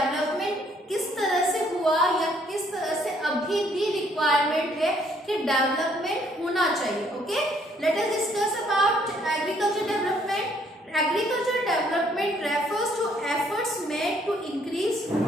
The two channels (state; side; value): normal; both; correlation 0.65